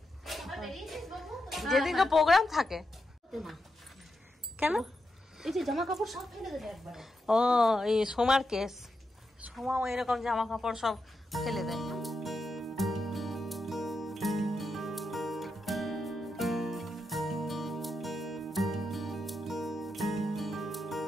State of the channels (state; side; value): normal; both; correlation 0.86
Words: যেদিনকে প্রোগ্রাম থাকে। কেন? এই যে জামা কাপড় সব ফেলে দেবে একবারে। ও এই সোমার কেস, সোমাও এরকম জামা কাপড় সব ফেলে দেয়।